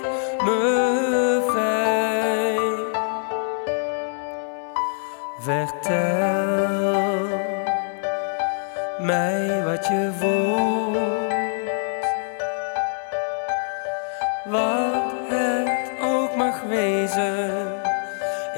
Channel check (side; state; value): right; silent; 63 dB below the other